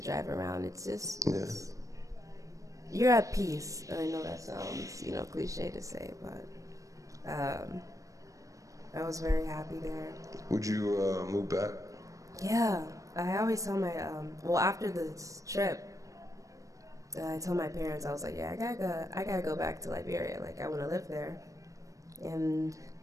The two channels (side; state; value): left; late; 0.16 ms